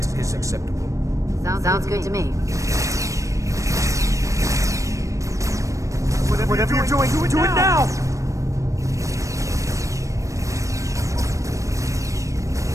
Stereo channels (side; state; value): left; late; 0.15 ms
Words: is acceptable. Sounds good to me. Whatever you're doing, do it now!